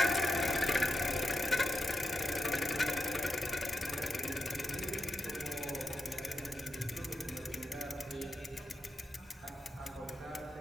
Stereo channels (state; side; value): normal; both; correlation 0.87